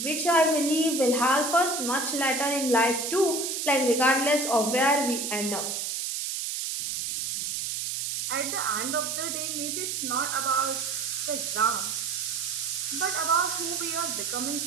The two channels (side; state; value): right; noise; hiss, 2 dB below the sound